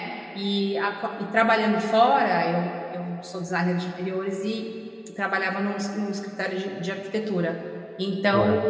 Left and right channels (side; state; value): both; identical; correlation 1.00